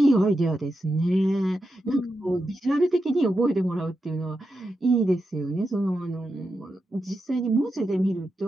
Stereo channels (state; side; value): normal; both; correlation 0.87